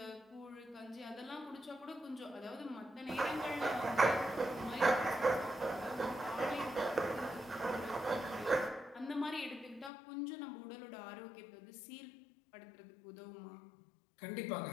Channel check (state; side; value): drops out; right; at 9.9 s